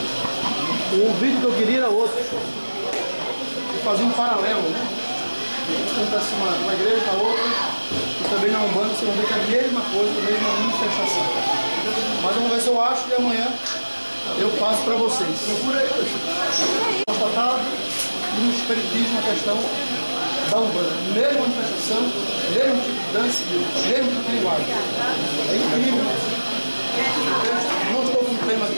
O vídeo que eu queria era outro. Eu fazia um paralelo, né? Acontece uma igreja com a outra, e também na Umbanda você vai ver que é a mesma coisa, a mesma manifestação. Mas vamos ver se eu acho e amanhã eu passo para vocês. Procura aí, constatado no espiritismo a questão da Umbanda. Mesma manifestação, mesmo tipo de dança, mesmo tipo de linguagem. É incrível. Não estou com o tema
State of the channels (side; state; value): both; inverted; correlation -1.00